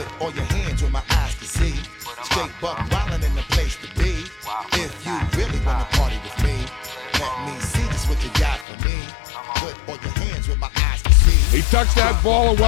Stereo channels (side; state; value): right; drops out; at 8.7 s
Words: all your hands where my eyes can see. Straight buck wildin' in the place to be. If you really wanna party with me, let me see just what you got for me. Put all your hands where my eyes can see. He tucks that ball